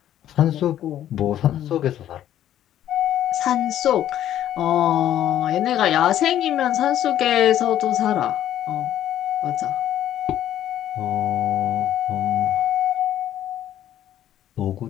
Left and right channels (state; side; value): quieter; right; 11.7 dB